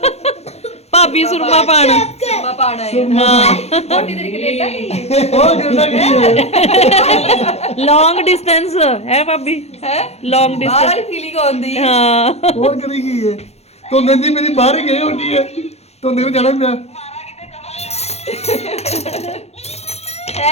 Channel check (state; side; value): late; right; 0.31 ms